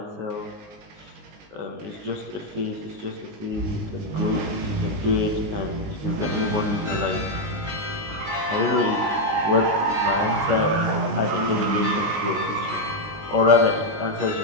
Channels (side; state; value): left; late; 19 ms